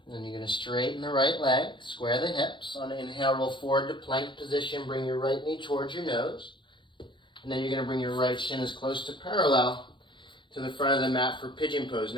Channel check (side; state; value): right; late; 0.23 ms